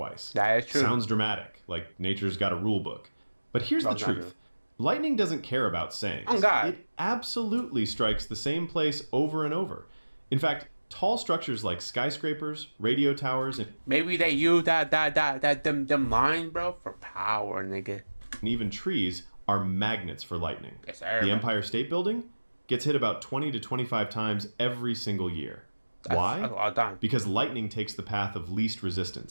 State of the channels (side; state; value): both; inverted; correlation -1.00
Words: That is true. Sounds dramatic, like nature's got a rule book. But here's No, the it's not truth. Lightning doesn't care about sayings. Oh, God. It absolutely strikes the same place over and over. In fact, tall structures like skyscrapers, radio towers, and Maybe they use them lines, bro, for power, nigga. even trees are magnets for lightning. Yes, sir. The Empire State Building gets hit about 20 to 25 times every single year. Why? That's a lot of time. Because lightning takes the path of least